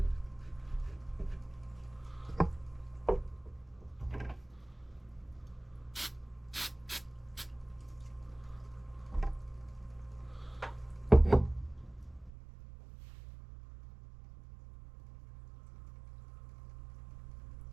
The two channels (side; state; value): left; drops out; at 12.3 s